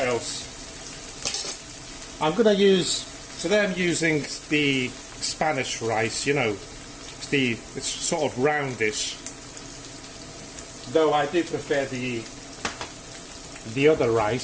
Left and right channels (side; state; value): both; identical; correlation 1.00